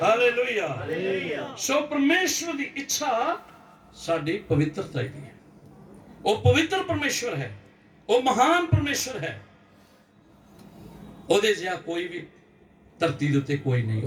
ਹਾਲੇਲੂਇਆ। ਸੋ ਪਰਮੇਸ਼ਵਰ ਦੀ ਇੱਛਾ ਸਾਡੀ ਪਵਿੱਤਰਤਾ ਦੀ ਹੈ। ਉਹ ਪਵਿੱਤਰ ਪਰਮੇਸ਼ਵਰ ਹੈ, ਉਹ ਮਹਾਨ ਪਰਮੇਸ਼ਵਰ ਹੈ। ਉਹਦੇ ਜਿਹਾ ਕੋਈ ਵੀ ਧਰਤੀ ਦੇ ਉੱਤੇ ਕੋਈ ਨਹੀਂ,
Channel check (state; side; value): identical; both; correlation 1.00